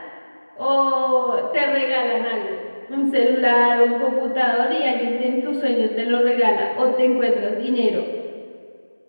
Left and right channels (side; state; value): both; inverted; correlation -1.00